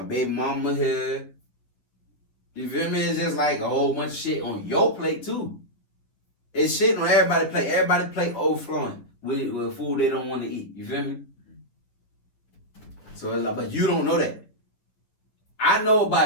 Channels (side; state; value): right; late; 9.5 ms